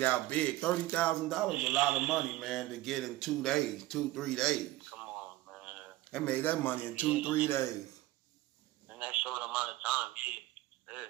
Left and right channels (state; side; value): quieter; left; 17.2 dB